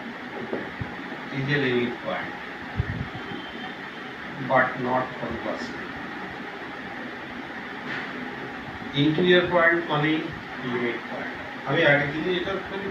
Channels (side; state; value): both; identical; correlation 1.00